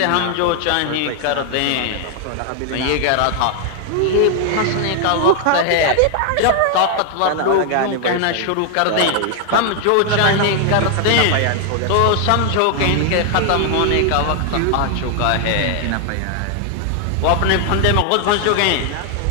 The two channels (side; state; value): both; different; correlation 0.00